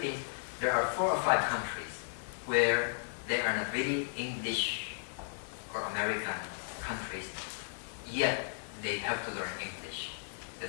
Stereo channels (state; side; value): silent; right; digital silence